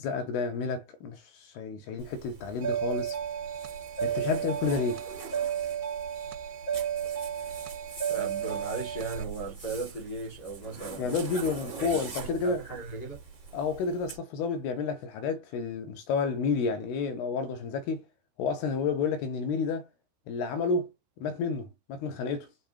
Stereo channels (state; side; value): late; right; 13 ms